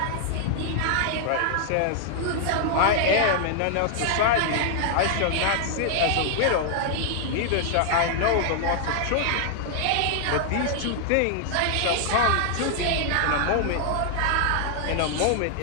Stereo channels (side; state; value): both; different; correlation 0.00